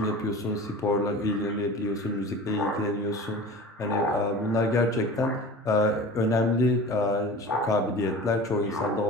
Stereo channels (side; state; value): both; normal; correlation 0.37